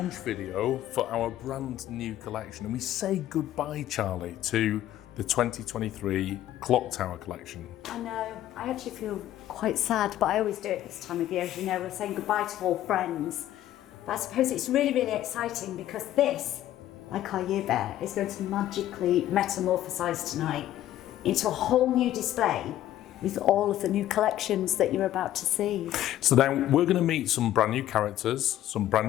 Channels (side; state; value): right; quieter; 13.1 dB